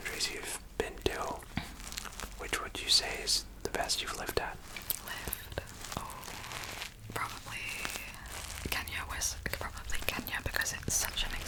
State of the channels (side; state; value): both; identical; correlation 1.00